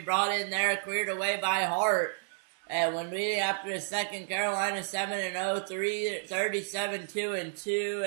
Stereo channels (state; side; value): silent; left; 57 dB below the other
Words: in there, cleared away by Hart. And when we after the second, Carolina 7-0, 37-2-2,